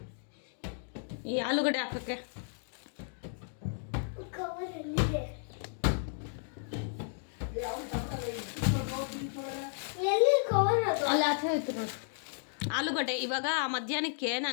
ಈ ಆಲೂಗಡ್ಡೆ ಹಾಕೋಕ್ಕೆ. ಅಲ್ಲ ಆಚೆ ಹೋಯ್ತು ನೋಡಿ ಆಲೂಗಡ್ಡೆ. ಇವಾಗ ಮಧ್ಯಾಹ್ನಕ್ಕೆ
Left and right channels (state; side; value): silent; right; digital silence